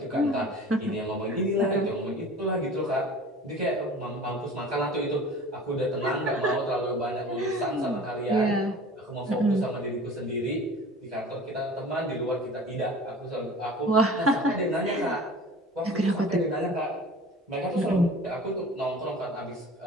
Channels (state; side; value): normal; both; correlation 0.42